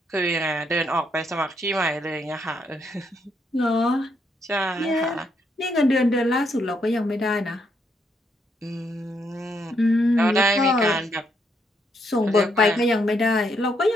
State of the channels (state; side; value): normal; both; correlation 0.76